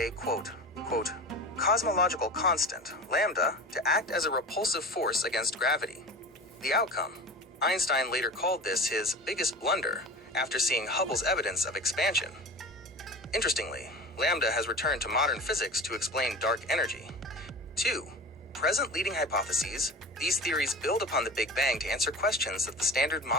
cosmological constant, lambda, to act as a repulsive force against gravity. The outcome: Einstein later called this his biggest blunder after seeing Hubble's evidence of expansion. Interestingly, lambda has returned to modern physics to explain dark energy. 2. Present leading hypotheses. These theories build upon the Big Bang to answer questions that the standard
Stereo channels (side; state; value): both; normal; correlation 0.34